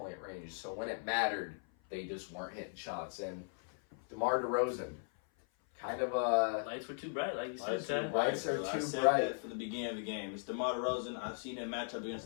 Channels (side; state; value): right; silent; 53 dB below the other